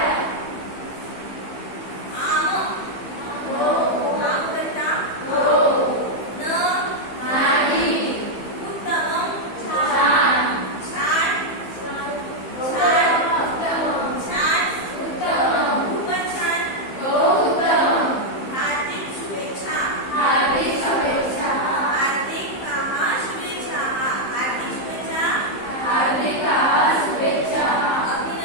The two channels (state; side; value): late; right; 15 ms